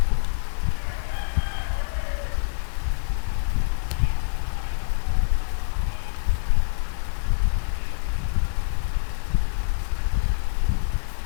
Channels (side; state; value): right; silent; digital silence